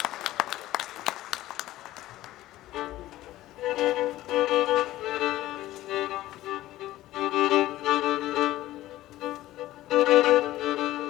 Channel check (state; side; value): quieter; right; 15.5 dB